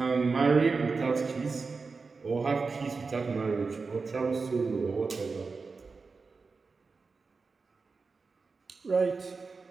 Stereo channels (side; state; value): left; quieter; 4.4 dB